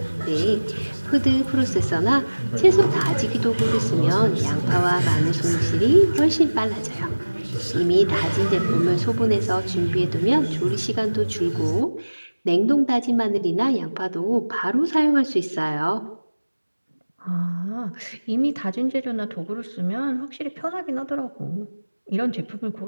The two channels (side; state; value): both; inverted; correlation -1.00